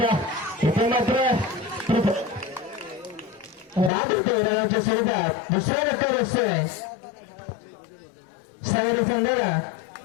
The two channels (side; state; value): right; drops out; at 3.9 s